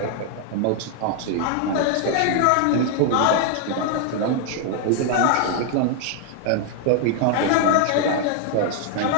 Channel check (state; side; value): different; both; correlation 0.00